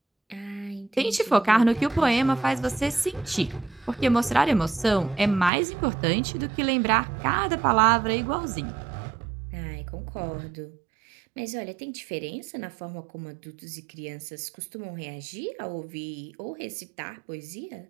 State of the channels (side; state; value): left; drops out; at 5.5 s